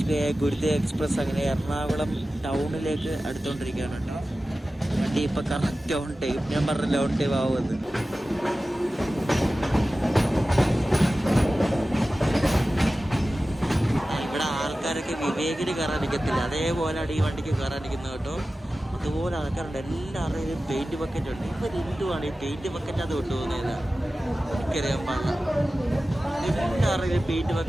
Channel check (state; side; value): normal; both; correlation 0.95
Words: ഗുരുദേവ് എക്സ്പ്രസ് അങ്ങനെ എറണാകുളം ടൗണിലേക്ക് അടുത്തുകൊണ്ടിരിക്കുകയാണ് കേട്ടോ. വണ്ടി ഇപ്പം കറക്റ്റ് ഓൺ ടൈം. ഞാൻ പറഞ്ഞില്ല ഓൺ ടൈം ആവുമെന്ന്. ഇവിടെ ആൾക്കാരൊക്കെ വിവേകിന് കയറാൻ നിൽക്കത്തില്ല, അതേപോലെയാണ് ഈ വണ്ടിക്ക് കയറാനിരിക്കുന്നത് കേട്ടോ. അതുപോലെ ആൾക്കാരുണ്ട്, എല്ലാവരുടെയും പെയിന്റ് ബക്കറ്റ് ഉണ്ട്. ഇവരെന്തുവാണ് ഈ പെയിന്റ് ബക്കറ്റ് അത് കൊണ്ടുപോകുന്നത്? എനിക്കറിയാൻ പാടില്ല. എല്ലാവരുടെയും പെയിന്റ്